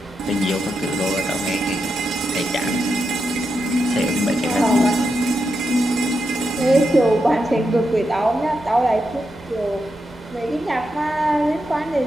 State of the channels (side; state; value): both; normal; correlation 0.85